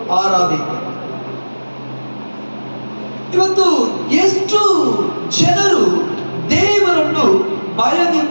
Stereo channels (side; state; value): both; inverted; correlation -1.00